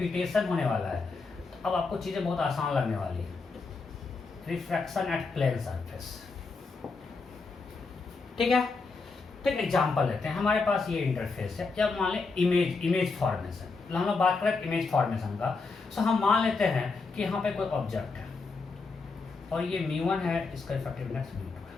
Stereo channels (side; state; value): right; quieter; 4.2 dB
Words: होने वाला है, तो अब आपको चीजें बहुत आसान लगने वाली है। रिफ्रैक्शन एट प्लेन सरफेस, ठीक है? तो एक एग्जाम्पल लेते हैं। हमारे पास ये इंटरफेस है, जब मान लें इमेज फॉर्मेशन, हम लोग बात करें इमेज फॉर्मेशन का। सो हम मान लेते हैं कि यहाँ पे कोई ऑब्जेक्ट है और ये μ1 है, इसका इफेक्टिवनेस μ2 है,